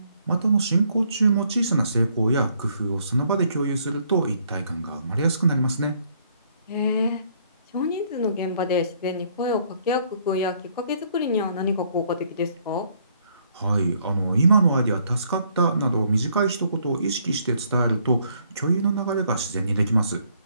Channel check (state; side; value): inverted; both; correlation -0.67